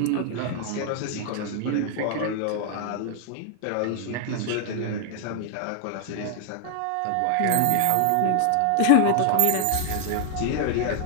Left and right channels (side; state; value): both; different; correlation 0.00